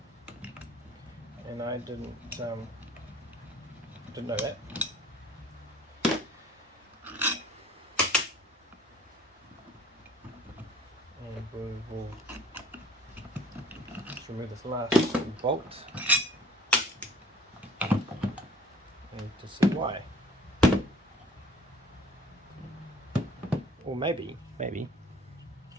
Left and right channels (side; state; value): both; normal; correlation 0.51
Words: and I didn't know that. And we will just remove this last bolt and to see why. Or maybe